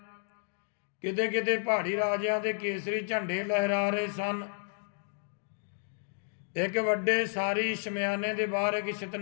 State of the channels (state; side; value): silent; right; digital silence